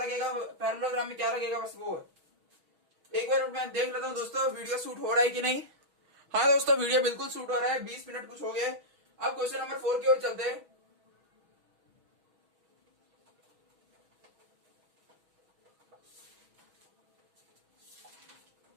पैरेललोग्राम में क्या लगेगा, बस वो है। एक बार मैं देख लेता हूं दोस्तों वीडियो शूट हो रहा है कि नहीं। हाँ दोस्तों वीडियो बिल्कुल शूट हो रहा है, 20 मिनट कुछ हो गए। अब क्वेश्चन नंबर 4 की ओर चलते हैं।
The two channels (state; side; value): late; left; 6.2 ms